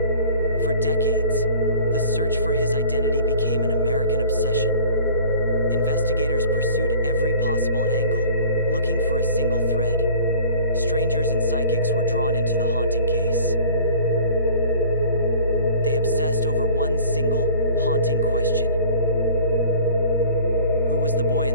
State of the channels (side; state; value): both; inverted; correlation -0.47